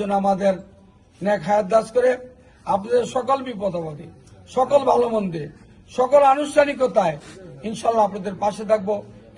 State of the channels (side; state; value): both; identical; correlation 1.00